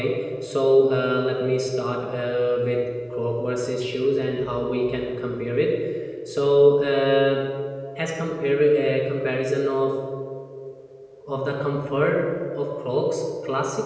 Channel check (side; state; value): both; identical; correlation 1.00